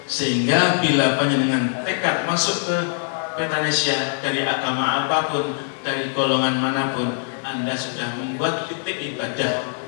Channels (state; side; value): silent; right; digital silence